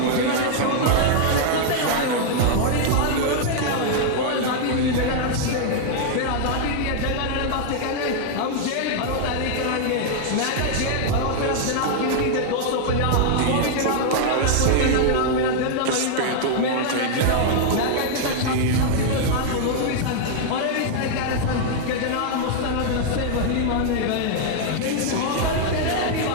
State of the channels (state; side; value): different; both; correlation 0.00